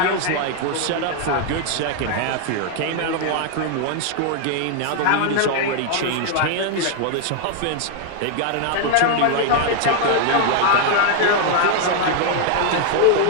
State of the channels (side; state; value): both; different; correlation 0.00